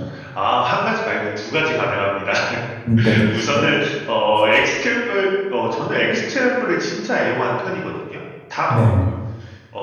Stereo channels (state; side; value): identical; both; correlation 1.00